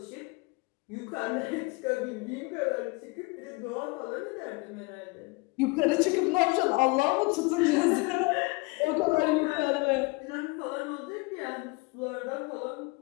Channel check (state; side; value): quieter; right; 26.6 dB